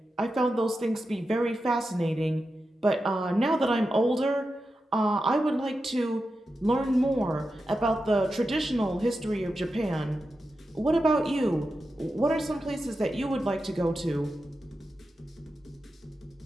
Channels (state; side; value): normal; both; correlation 0.90